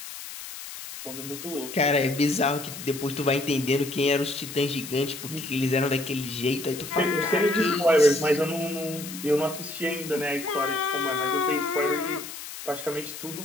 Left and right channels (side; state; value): left; noise; hiss, 11 dB below the sound